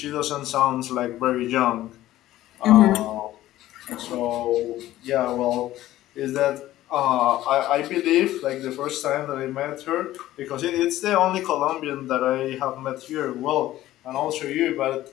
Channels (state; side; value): quieter; right; 14.8 dB